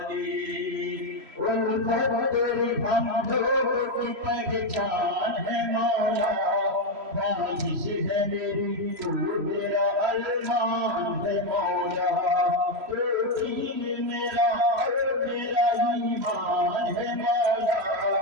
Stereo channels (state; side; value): late; left; 3.1 ms